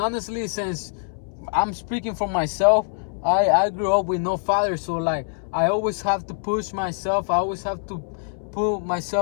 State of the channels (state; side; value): silent; right; 63 dB below the other